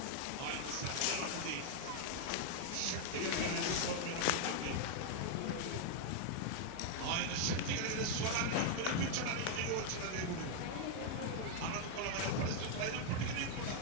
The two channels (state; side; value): different; both; correlation 0.00